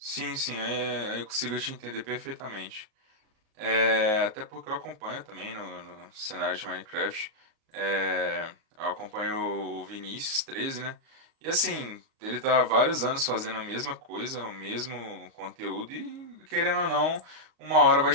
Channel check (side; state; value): left; late; 37 ms